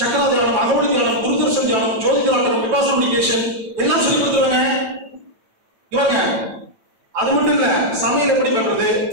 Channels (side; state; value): left; late; 9.2 ms